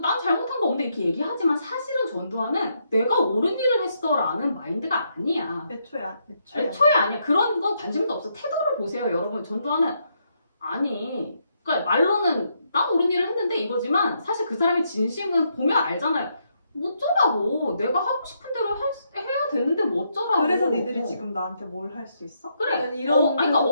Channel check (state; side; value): inverted; both; correlation -0.77